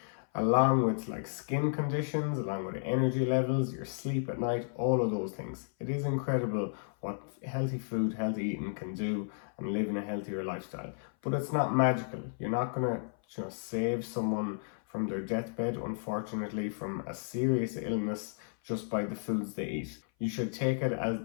along with like skin conditions, along with energy levels, your sleep at night, all of those things. It is incredible what healthy food, healthy eating can do and living a healthier lifestyle. But it's not magical. You're not gonna save someone from their deathbed, unfortunately, from a serious illness just by the foods they eat. You should take it as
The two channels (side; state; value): right; silent; 56 dB below the other